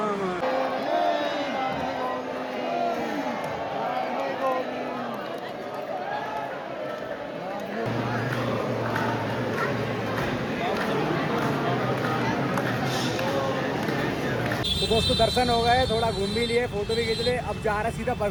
तो दोस्तों दर्शन हो गए, थोड़ा घूम भी लिए, फोटो भी खींच लिए, अब जा रहा है सीधा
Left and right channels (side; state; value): both; identical; correlation 1.00